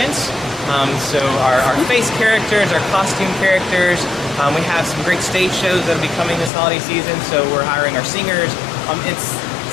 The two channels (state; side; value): drops out; right; at 6.5 s